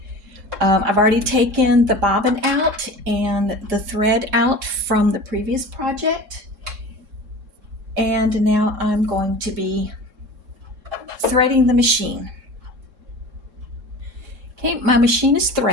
I've already taken the bobbin out and the thread out from the previous project, and now I'm going to be threading the machine. Okay, my machine is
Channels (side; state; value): left; late; 3.7 ms